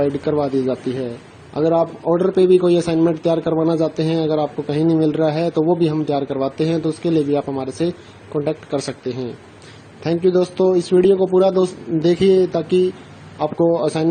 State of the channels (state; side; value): identical; both; correlation 1.00